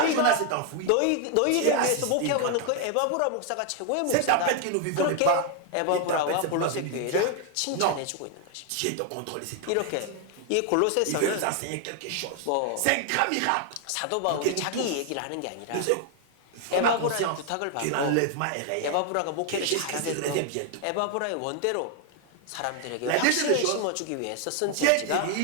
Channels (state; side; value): different; both; correlation 0.00